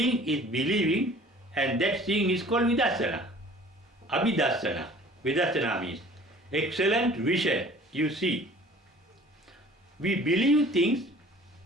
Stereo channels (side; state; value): both; normal; correlation 0.49